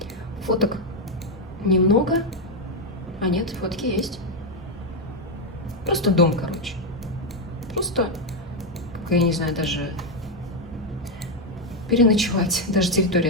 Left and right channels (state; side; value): normal; both; correlation 0.03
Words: Фоток немного. А нет, фотки есть. Просто дом, короче. Просто, как я не знаю, даже переночевать. Даже территории